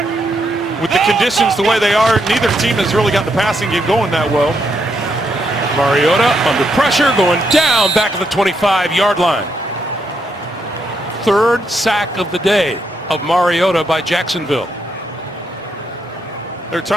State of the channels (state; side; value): normal; both; correlation 0.79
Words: With the conditions the way they are, neither team has really got the passing game going that well. Mariota under pressure, going down back of the 25-yard line. Third sack of the day of Mariota by Jacksonville. They're